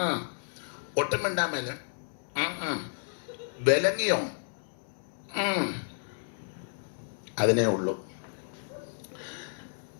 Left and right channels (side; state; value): right; silent; 57 dB below the other